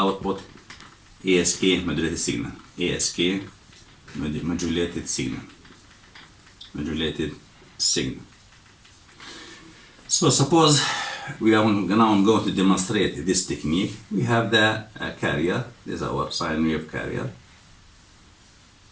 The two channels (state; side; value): identical; both; correlation 1.00